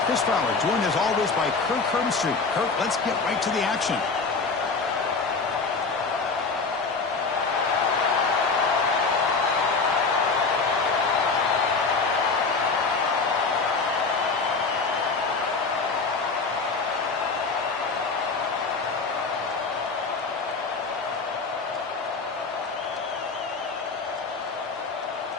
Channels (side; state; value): right; quieter; 4.4 dB